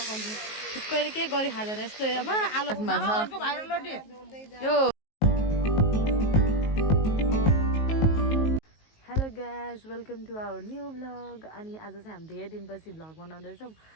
थुक्कैले के गरी खाँदैन यस्तो आलु यो hello guys welcome to our new vlog अनि आज चाहिँ हामी धेरै दिनपछि भ्लग बनाउँदैछौँ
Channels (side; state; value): right; late; 19 ms